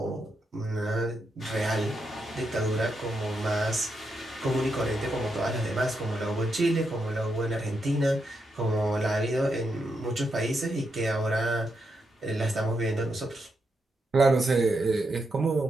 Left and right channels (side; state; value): both; normal; correlation 0.83